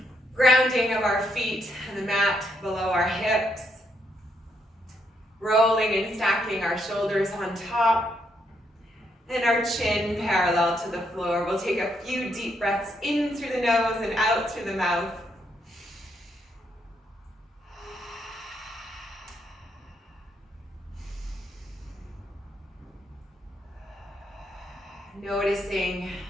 Grounding of our feet on the mat below our hips. Rolling and stacking our shoulders on top. And our chin parallel to the floor. We'll take a few deep breaths in through the nose and out through the mouth. Noticing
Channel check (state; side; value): normal; both; correlation 0.76